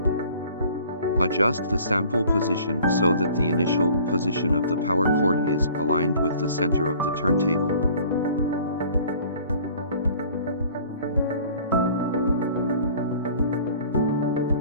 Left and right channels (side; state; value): both; inverted; correlation -0.50